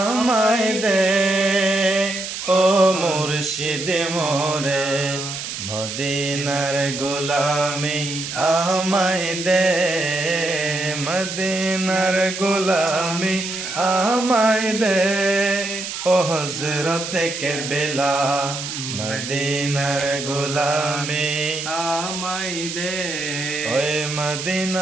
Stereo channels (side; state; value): right; noise; hiss, 7 dB below the sound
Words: দে ও মুর্শিদ মোরে, মদিনার গোলামি আমায় দে, মদিনার গোলামি আমায় দে ও হযরত কারবালা, মদিনার গোলামি আমায় দে। ওই